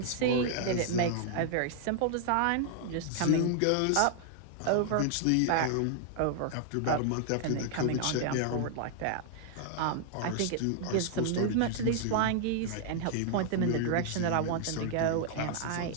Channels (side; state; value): both; different; correlation 0.00